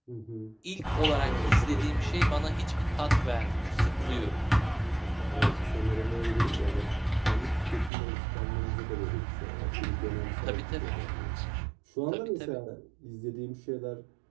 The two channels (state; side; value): drops out; left; at 7.9 s